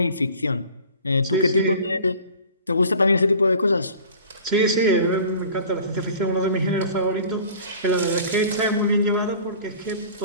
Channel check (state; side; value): inverted; both; correlation -0.44